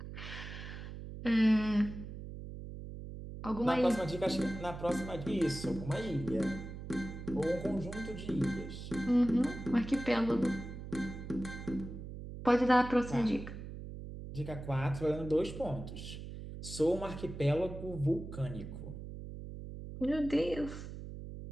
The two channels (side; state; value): right; noise; hum, 10 dB below the sound